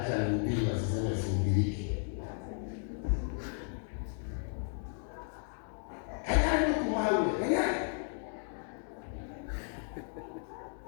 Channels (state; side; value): silent; right; 55 dB below the other